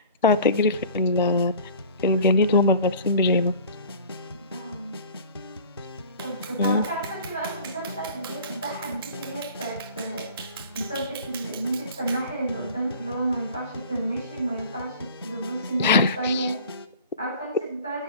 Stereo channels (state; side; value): inverted; both; correlation -0.43